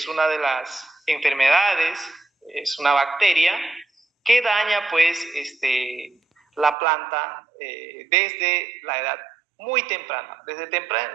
una de las enfermedades, es una bacteria que daña, pues, la planta desde la edad muy temprana. Desde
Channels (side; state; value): left; drops out; at 6.8 s